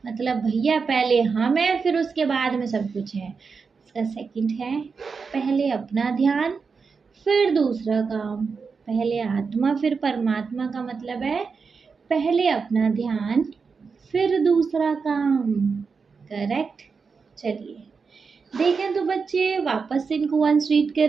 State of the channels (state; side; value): quieter; left; 5.2 dB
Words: मतलब भैया पहले हम है फिर उसके बाद में सब कुछ है। इसका सेकंड है पहले अपना ध्यान फिर दूसरा काम। पहले आत्मा फिर परमात्मा का मतलब है पहले अपना ध्यान फिर दूसरा काम। करेक्ट। चलिए देखें तो बच्चे वापस से इनको वंस रीड